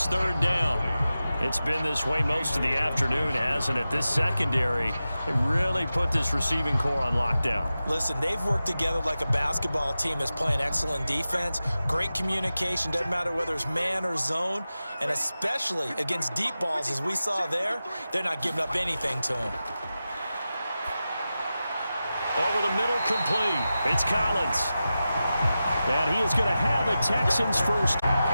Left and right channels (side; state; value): both; inverted; correlation -0.93